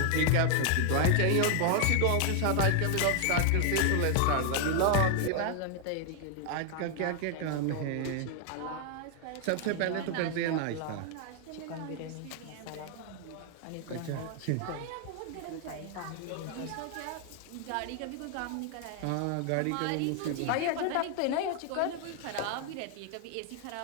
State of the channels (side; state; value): both; different; correlation 0.00